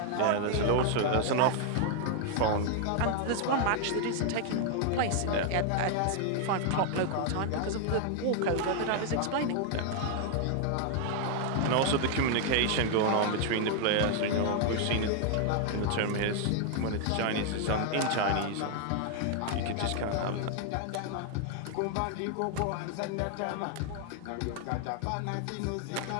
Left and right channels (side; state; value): both; different; correlation 0.00